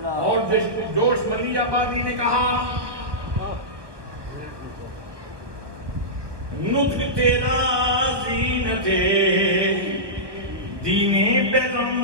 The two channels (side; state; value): left; late; 1.2 ms